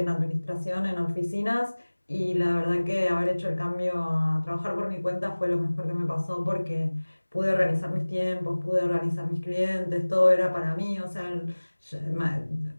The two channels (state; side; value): inverted; both; correlation -1.00